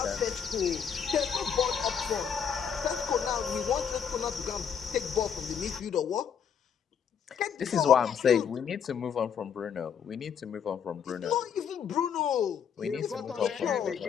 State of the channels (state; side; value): quieter; right; 7.5 dB